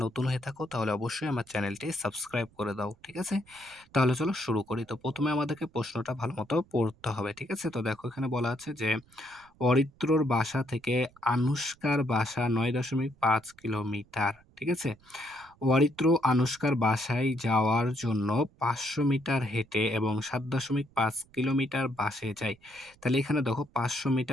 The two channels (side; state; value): right; noise; rumble, 29 dB below the sound